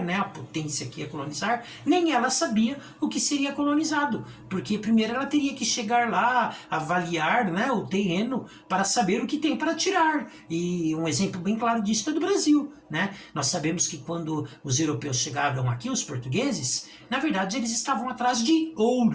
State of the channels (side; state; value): both; identical; correlation 1.00